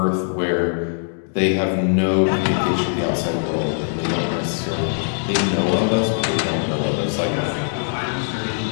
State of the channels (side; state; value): right; silent; digital silence